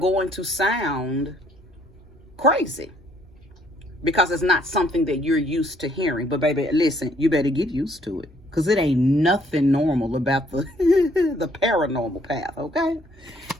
to sound crazy, because it's not something that you're used to hearing. But baby, listen, you better get used to it, because it ain't nothing normal about the the paranormal path, okay?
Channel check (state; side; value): noise; right; hum, 26 dB below the sound